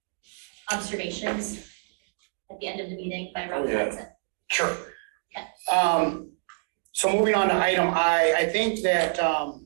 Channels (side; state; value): left; silent; 60 dB below the other